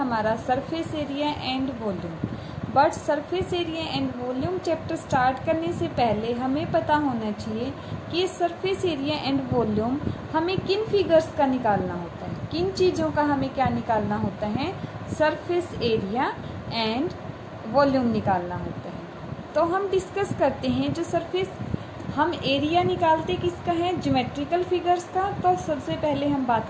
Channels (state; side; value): identical; both; correlation 1.00